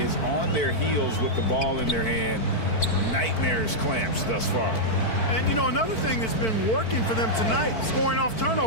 on their heels with the ball in their hand. Nightmarish clamps thus far. And, you know, another thing that's been working for them tonight, scoring off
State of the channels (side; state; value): right; late; 4.5 ms